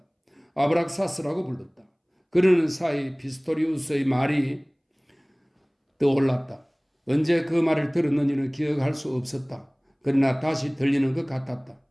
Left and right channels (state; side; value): identical; both; correlation 1.00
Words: 아브락사스라고 불렀다. 그러는 사이 피스토리우스의 말이 떠올랐다. 언제 그 말을 들었는지는 기억할 수 없었다. 그러나 다시 들리는 것 같았다.